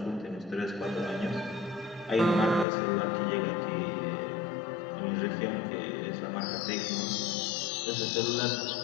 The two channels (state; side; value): drops out; right; at 2.7 s